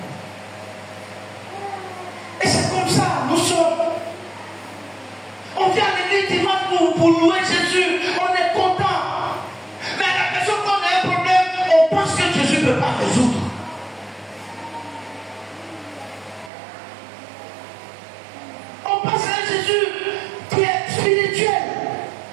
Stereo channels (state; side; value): drops out; left; at 16.5 s